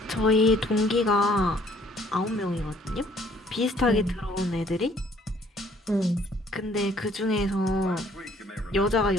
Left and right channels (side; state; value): both; normal; correlation 0.61